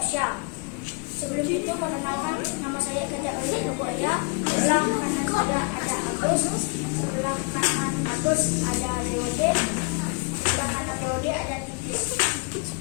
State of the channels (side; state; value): right; quieter; 35.2 dB